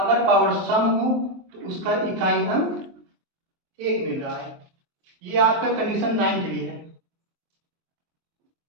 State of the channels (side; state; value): left; late; 23 ms